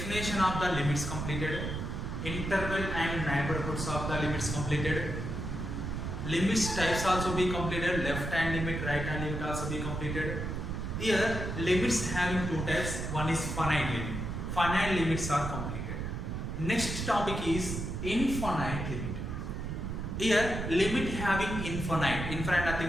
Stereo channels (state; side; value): noise; right; rumble, 4 dB below the sound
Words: of the limits completed, interval and neighborhoods of the limits completed, limits types also be completed, left hand limit, right hand limit also be completed. Here, limits having two types, one is finite limit. Finite limits are completed. Next topic is infinite limit. Here, limit having infinite